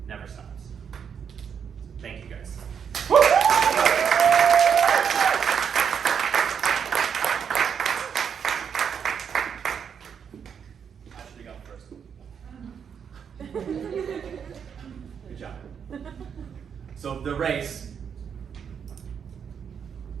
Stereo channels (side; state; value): left; quieter; 7.4 dB